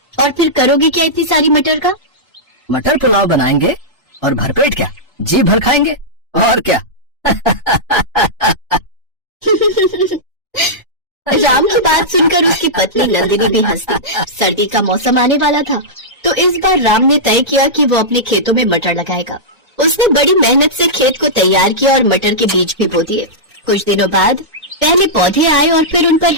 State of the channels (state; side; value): normal; both; correlation -0.13